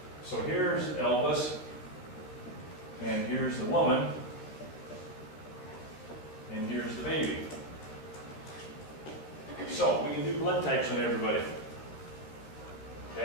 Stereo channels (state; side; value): late; right; 14 ms